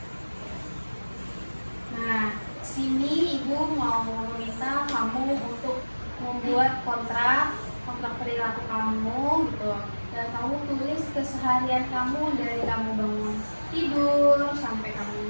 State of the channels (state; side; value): inverted; both; correlation -1.00